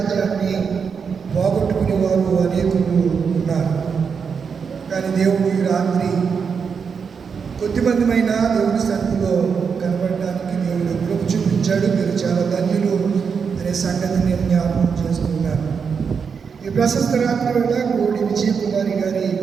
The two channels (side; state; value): left; quieter; 6.1 dB